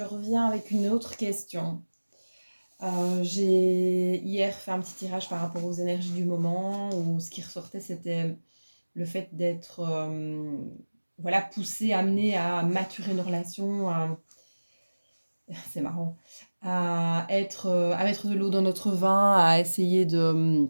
reviens avec une autre question. J'ai hier fait un petit tirage par rapport aux énergies du moment où ce qui ressortait c'était le fait d'être voilà, poussé, amené à maturer une relation, c'est marrant, à mettre de l'eau dans notre vin, à essayer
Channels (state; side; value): inverted; both; correlation -1.00